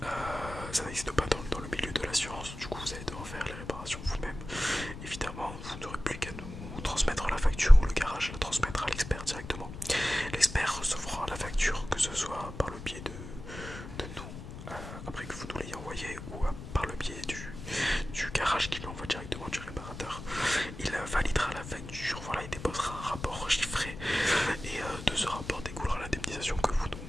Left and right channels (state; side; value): noise; left; rumble, 11 dB below the sound